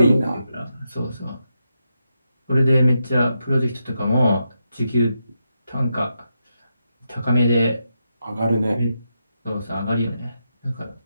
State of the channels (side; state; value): both; inverted; correlation -0.85